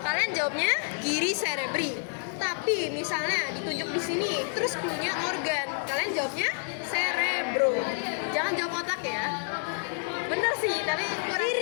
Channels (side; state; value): right; silent; 57 dB below the other